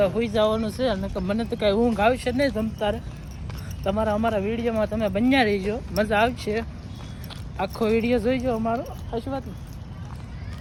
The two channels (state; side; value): identical; both; correlation 1.00